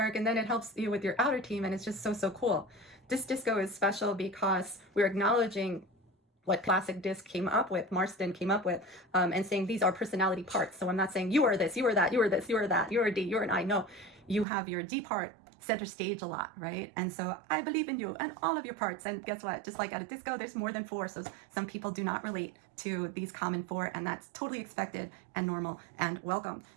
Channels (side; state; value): left; drops out; at 14.5 s